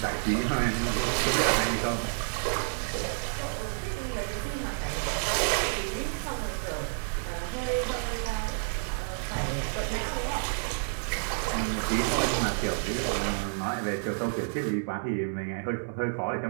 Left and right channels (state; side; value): silent; left; 58 dB below the other